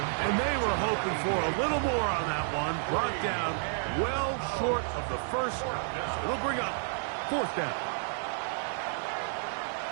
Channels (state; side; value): silent; left; digital silence